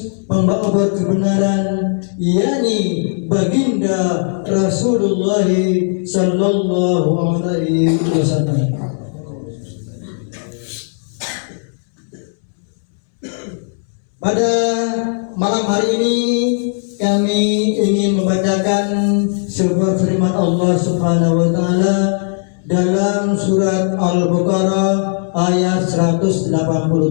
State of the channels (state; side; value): silent; right; 68 dB below the other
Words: pembawa kebenaran, yakni baginda Rasulullah sallallahu alaihi wasallam. Pada malam hari ini kami ingin membacakan sebuah firman Allah Subhanahu wa Ta'ala dalam surat Al-Baqarah ayat 188.